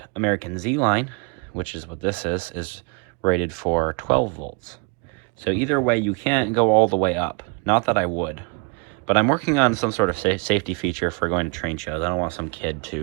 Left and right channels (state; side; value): quieter; left; 33.4 dB